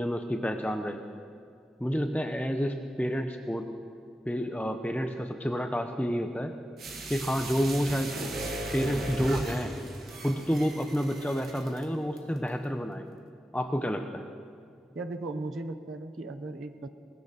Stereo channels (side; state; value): both; normal; correlation 0.91